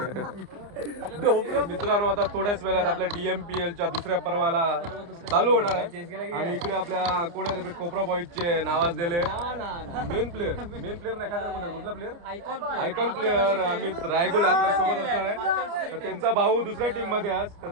तर मित्रांनो आता थोड्याच वेळात आपल्या डीएमपीएलच्या दुसऱ्या पर्वाला चालू होणार आहे. आणि इकडे आपल्या कोण आहे? कोपरा बॉईजचे नावाजलेले मेन प्लेअर नाही काय म्हणतात, कुठला प्लेअर? आयकॉन प्लेअर अमित रायगुल आपल्या सोबत असणार आहे. तर त्यांचा भाऊ दुसऱ्या टीम मध्ये आज, तर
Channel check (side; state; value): left; late; 29 ms